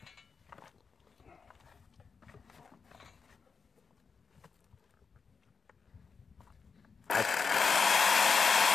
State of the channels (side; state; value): right; quieter; 5.3 dB